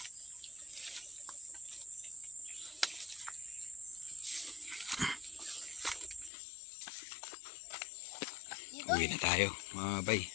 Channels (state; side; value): drops out; right; at 6.3 s